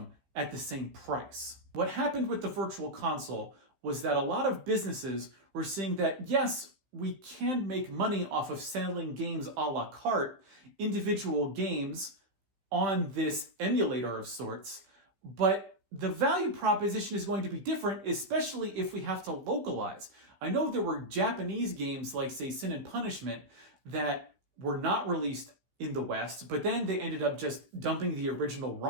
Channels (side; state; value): left; late; 15 ms